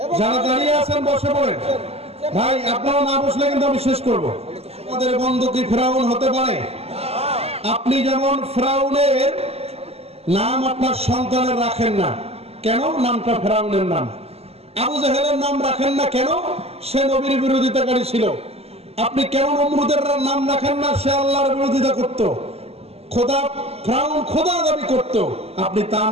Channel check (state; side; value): late; left; 0.29 ms